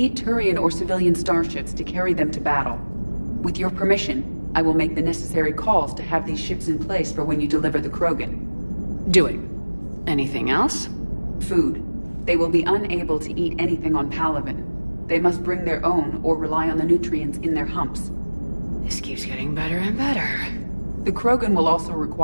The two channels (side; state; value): both; inverted; correlation -1.00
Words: Turian or civilian starships to carry them to battle. With your permission, I will make the necessary calls to have these ships in place for when you deliver the Krogan. Do it. Anything else? Food. They will be unable to eat anything on Palaven. They must bring their own or rely on the nutrients in their humps. This keeps getting better and better. The Krogan will also